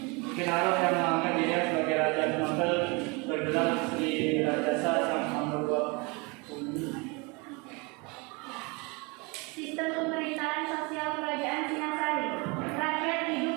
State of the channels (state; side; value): quieter; left; 28.5 dB